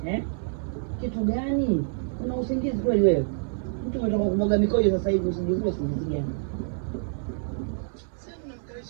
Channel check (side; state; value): left; silent; 60 dB below the other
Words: Kitu gani? Una usingizi kweli wewe? Mtu unataka kumwaga mikojo sasa hivi usingizi gani? Sasa